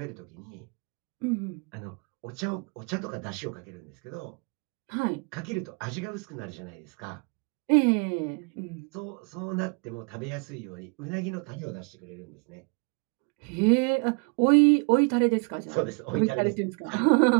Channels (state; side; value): quieter; left; 33.6 dB